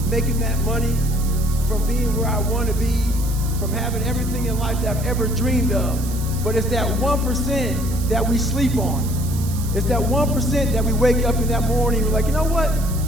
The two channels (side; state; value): right; noise; hiss, 13 dB below the sound